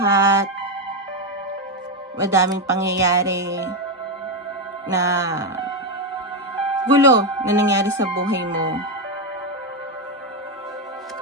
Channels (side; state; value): both; normal; correlation 0.07